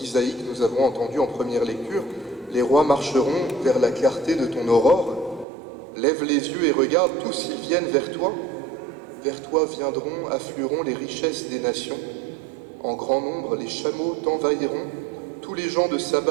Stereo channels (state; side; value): drops out; left; at 5.5 s